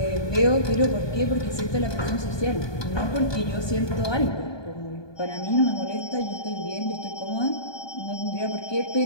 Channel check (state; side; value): late; right; 1.2 ms